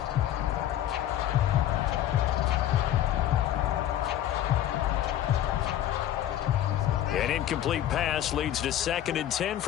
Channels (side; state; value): right; quieter; 11.9 dB